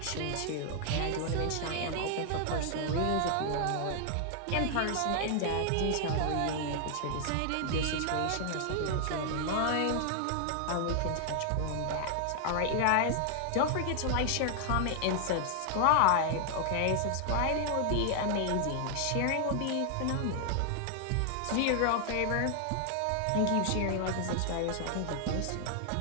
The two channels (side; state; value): both; different; correlation 0.00